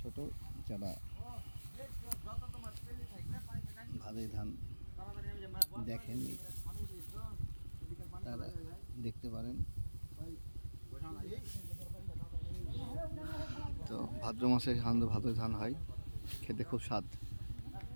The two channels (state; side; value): inverted; both; correlation -1.00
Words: যারা ভাদই ধান দেখেননি তারা দেখতে পারেন। তো ভাদ্র মাসে সাধারণত ভাদই ধান হয়, খেতে খুব স্বাদ,